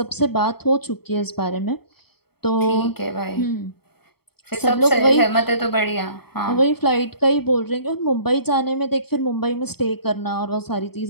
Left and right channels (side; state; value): right; late; 0.96 ms